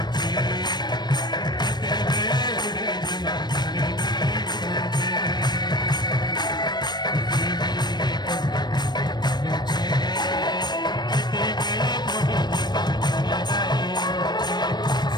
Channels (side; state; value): right; late; 0.21 ms